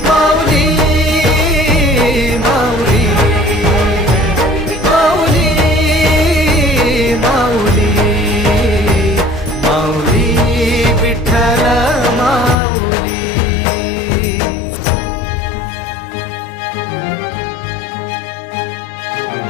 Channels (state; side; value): drops out; right; at 12.6 s